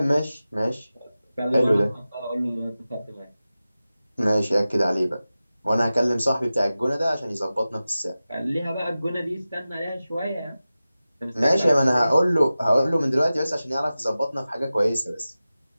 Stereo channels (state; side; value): inverted; both; correlation -0.95